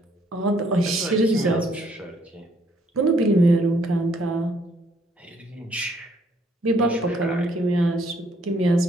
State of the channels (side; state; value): both; normal; correlation 0.67